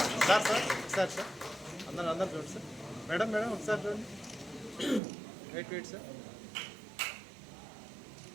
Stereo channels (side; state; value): left; drops out; at 5.0 s